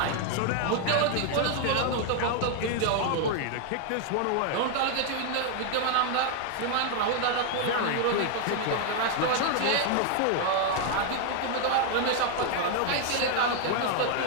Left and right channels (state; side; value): different; both; correlation 0.00